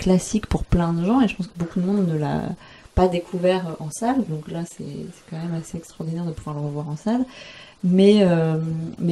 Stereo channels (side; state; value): both; identical; correlation 1.00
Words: pour plein de gens, et je pense que beaucoup de monde ne l'a pas découvert en salle. Donc là, c'est quand même assez extraordinaire de pouvoir le revoir en salle. Mais